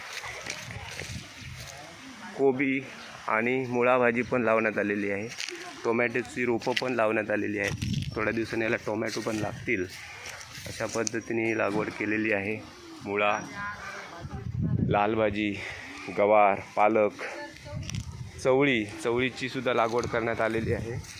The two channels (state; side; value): identical; both; correlation 1.00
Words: कोबी आणि मुळा भाजी पण लावण्यात आलेली आहे। टोमॅटोची रोपं पण लावण्यात आलेली आहेत, थोड्या दिवसांनी याला टोमॅटो पण लागतील, अशा पद्धतीने लागवड केलेली आहे। मुळा, लाल भाजी, गवार, पालक, चवळीची सुद्धा लागवड करण्यात आलेली आहे।